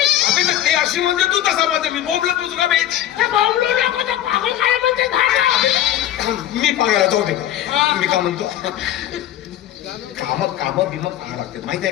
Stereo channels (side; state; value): right; quieter; 12.1 dB